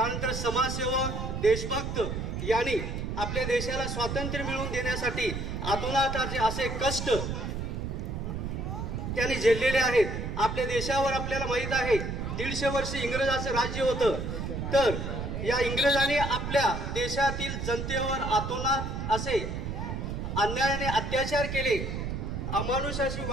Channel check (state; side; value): noise; right; rumble, 4 dB below the sound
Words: समाजसेवक, देशभक्त यांनी आपल्या देशाला स्वातंत्र्य मिळवून देण्यासाठी आतोनात असे कष्ट त्यांनी झेललेले आहेत. आपल्या देशावर आपल्याला माहित आहे 150 वर्ष इंग्रजांचं राज्य होतं. तर या इंग्रजांनी आपल्या देशातील जनतेवर आतोनात असे अन्यायाने अत्याचार केले, अमानुषाची